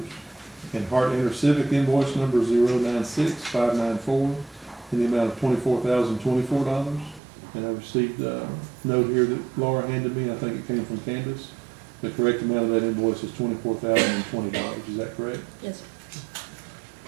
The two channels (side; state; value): left; drops out; at 7.2 s